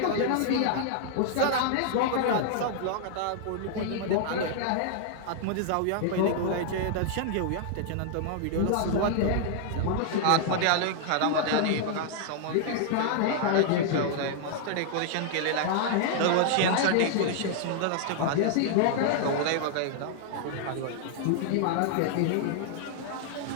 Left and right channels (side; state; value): both; different; correlation 0.00